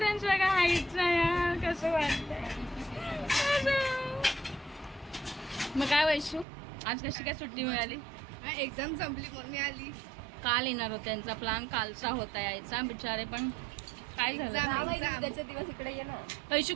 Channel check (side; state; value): left; drops out; at 6.5 s